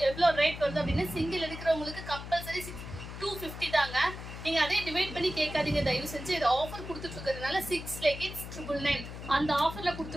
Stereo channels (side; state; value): left; noise; hum, 10 dB below the sound